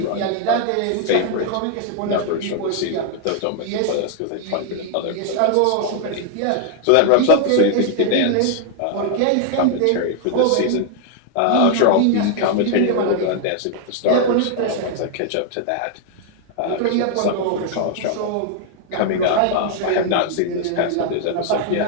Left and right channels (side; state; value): both; different; correlation 0.00